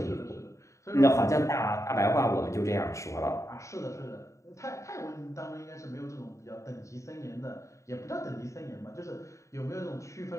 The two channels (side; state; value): right; late; 0.15 ms